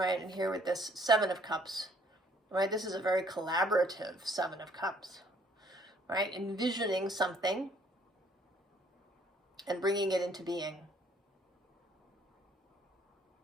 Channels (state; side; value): normal; both; correlation 0.61